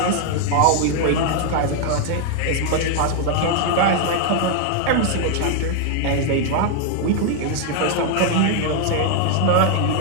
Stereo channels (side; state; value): both; different; correlation 0.00